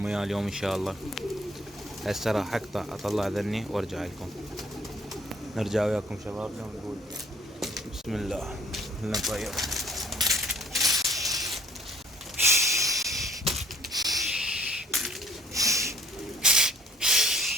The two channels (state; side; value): normal; both; correlation 0.58